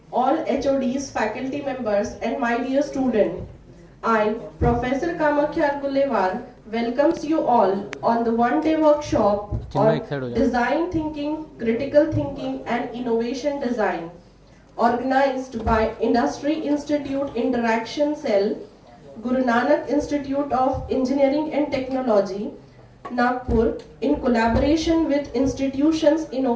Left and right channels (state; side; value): identical; both; correlation 1.00